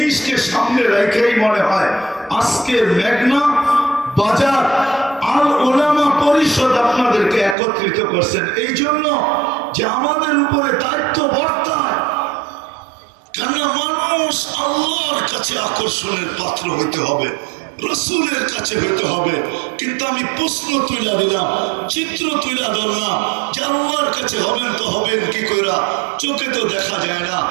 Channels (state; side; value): drops out; left; at 7.6 s